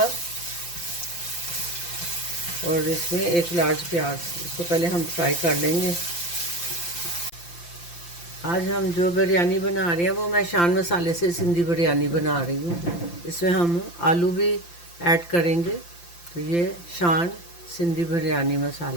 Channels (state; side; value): late; right; 5.8 ms